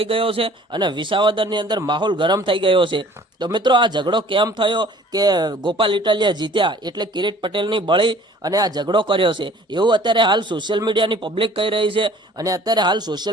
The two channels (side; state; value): both; normal; correlation 0.52